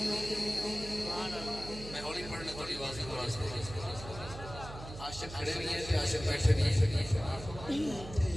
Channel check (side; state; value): right; noise; hum, 12 dB below the sound